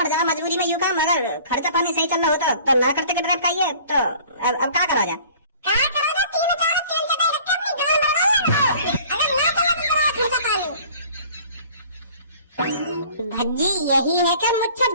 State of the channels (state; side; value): inverted; both; correlation -0.50